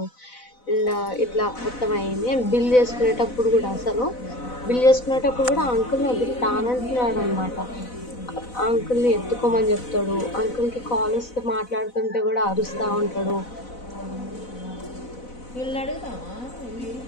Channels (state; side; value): late; right; 4.0 ms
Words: అండ్ ఇట్లా మొత్తం అయింది. అండ్ బిల్ చేసుకునేటప్పుడు కూడా అసలు బిల్ చేసుకునేటప్పుడు కూడా అంకుల్ని వదిలి తానంటున్నాడు అనమాట. అంకుల్ని ఎత్తుకోమని చెప్తాడు. అంకుల్కి కాల్ వస్తే మాట్లాడుతుంటే కూడా అరుస్తూ ఉంటాడు. వీళ్ళని అడుగుతామా ఇవి